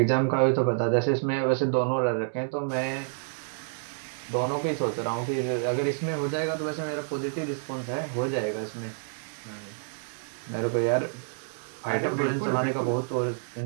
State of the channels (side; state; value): left; silent; digital silence